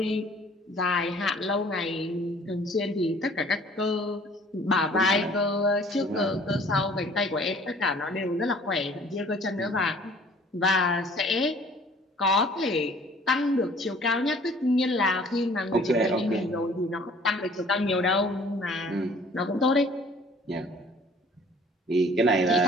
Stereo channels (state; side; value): normal; both; correlation 0.53